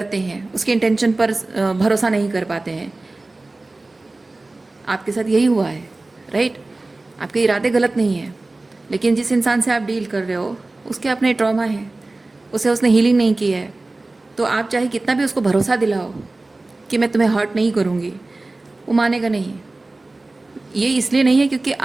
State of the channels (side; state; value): left; quieter; 3.1 dB